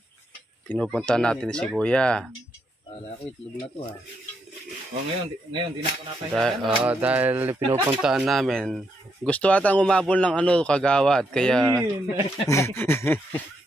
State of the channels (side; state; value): both; normal; correlation 0.79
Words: pinupunta natin si Kuya. Kala ko itlog na to ha. Ngayon di na ako napahinga. Dahil pinupuntaan namin. Gusto atang umabol ng kagawad. Kaya